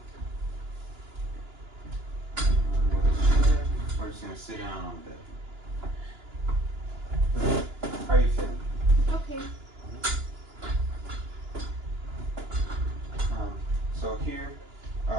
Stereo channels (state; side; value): late; left; 2.9 ms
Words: We're just gonna sit down on the bed. How are you feeling? Okay. So here,